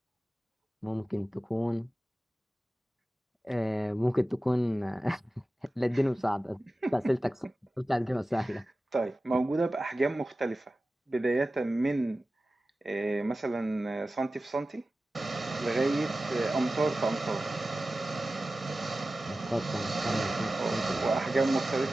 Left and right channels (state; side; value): normal; both; correlation 0.95